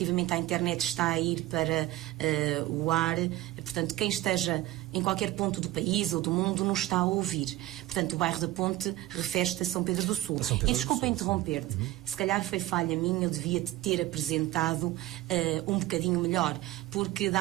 à internet está a ir para o ar, portanto quem esteja em qualquer ponto do país ou do mundo nos está a ouvir. Portanto, o bairro da Ponte refere-se a São Pedro do Sul. E desculpa interromper-te, se calhar foi falha minha, eu devia-te ter apresentado um bocadinho melhor, porque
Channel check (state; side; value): quieter; left; 16.5 dB